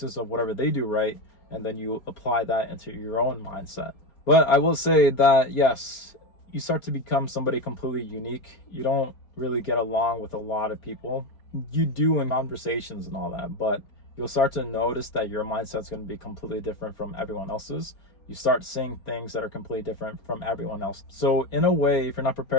of whatever they do right, and then you apply that into your own mindset. But I will say that, yes, you start to become somebody completely unique. You don't really get along with a lot of people. You do in conversations and all that, but you'll start to notice that your mindset's going to be completely different from everyone else's. You start seeing things that are completely different from everyone else. So in a way, if you're not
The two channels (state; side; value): late; right; 4.4 ms